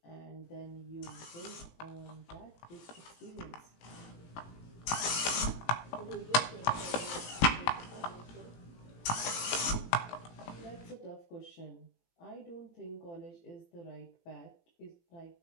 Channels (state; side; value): late; right; 18 ms